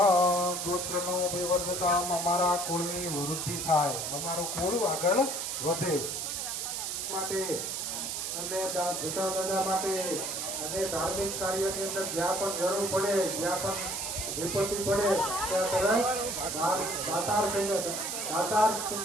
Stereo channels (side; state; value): right; noise; hiss, 3 dB below the sound